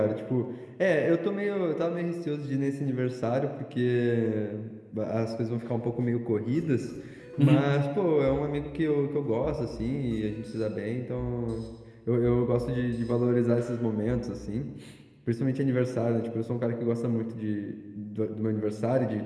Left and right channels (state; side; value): identical; both; correlation 1.00